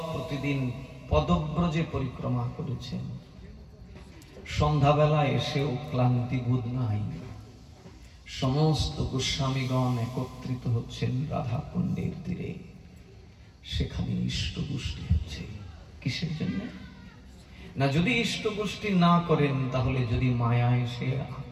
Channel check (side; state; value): both; identical; correlation 1.00